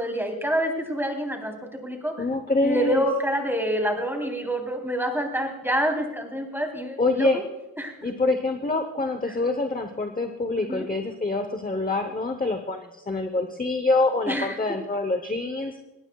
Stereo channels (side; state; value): both; normal; correlation 0.53